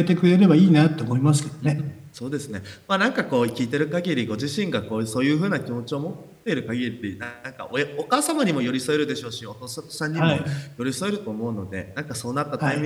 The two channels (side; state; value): both; identical; correlation 1.00